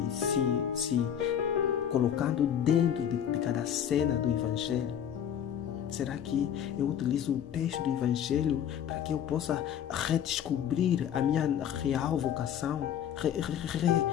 se colocando dentro de cada cena do Evangelho? Será que eu utilizo o texto do Evangelho para que eu possa redescobrir a minha real vocação?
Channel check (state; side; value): quieter; right; 9.4 dB